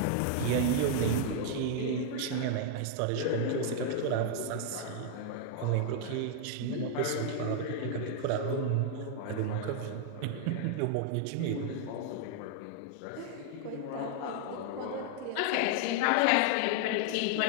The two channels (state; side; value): different; both; correlation 0.00